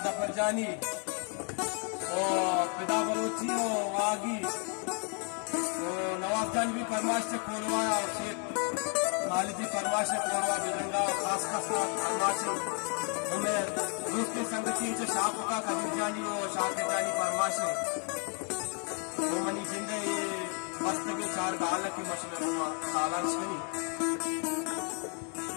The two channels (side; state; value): right; quieter; 39.6 dB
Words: जफर जानी और पिदा बलोची हो, वागी तो नवाब जान भी फरमाश से कोरवा और शेख खालिदी फरमाश से कोरवा बिरंगा खास खास फरमाश हमें दूसरी संगति जो शाह का कबीर जानी हो, शाह जानी फरमाश तो मनी जिंदे मस्त के चार गाल की मशहूर सालान शनी